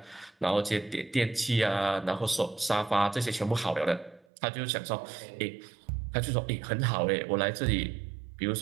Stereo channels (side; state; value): left; drops out; at 4.2 s